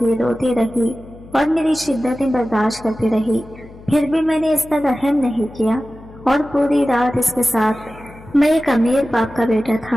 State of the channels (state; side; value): noise; left; hum, 20 dB below the sound